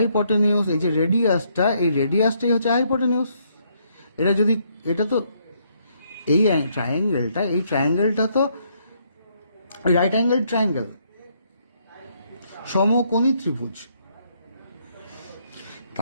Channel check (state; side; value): inverted; both; correlation -0.72